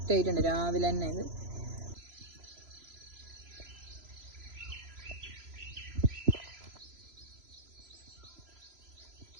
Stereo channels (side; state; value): left; late; 3.0 ms